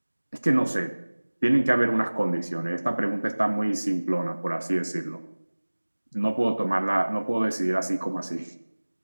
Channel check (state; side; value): inverted; both; correlation -1.00